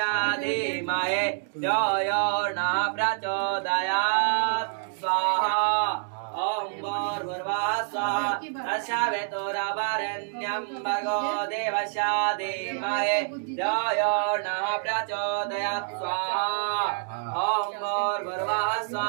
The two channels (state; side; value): silent; left; digital silence